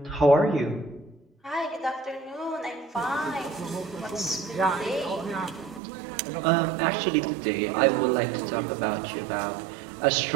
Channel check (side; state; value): left; drops out; at 5.8 s